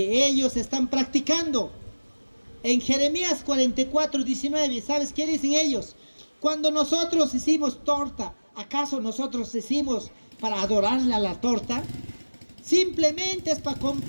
ellos están practicando. En Jeremías 44:19, ¿sabes qué dicen ellos? Cuando nosotros hicimos torta, ¿acaso nosotros hicimos para adorarle a la torta? Simplemente es para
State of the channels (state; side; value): inverted; both; correlation -1.00